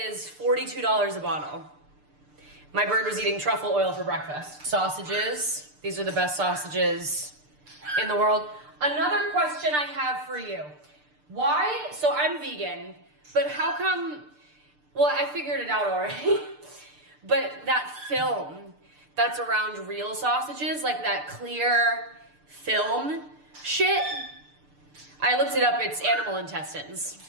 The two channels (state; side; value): late; left; 6.7 ms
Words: $42 a bottle. My bird was eating truffle oil for breakfast. Sausages. These are the best sausages in the world. Another question I have for you. Why, so I'm vegan, but how come, well, I figured it out already, but that film that's around real sausages, like that clear film shit, I looked it up, it's animal intestines.